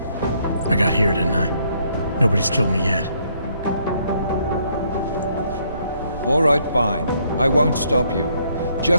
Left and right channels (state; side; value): inverted; both; correlation -0.70